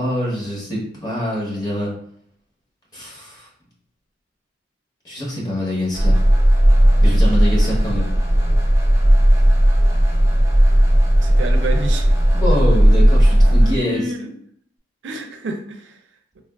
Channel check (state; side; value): normal; both; correlation 0.97